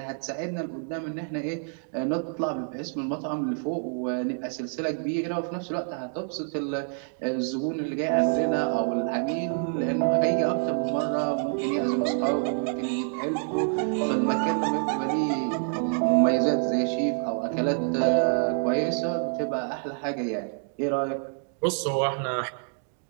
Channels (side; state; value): left; silent; 60 dB below the other